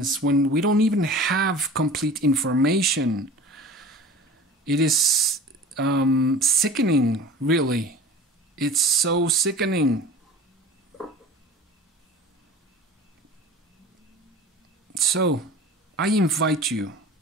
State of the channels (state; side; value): normal; both; correlation 0.39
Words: when we don't even have complete information? It is sickening, really. It's so sickening. So, I invite you,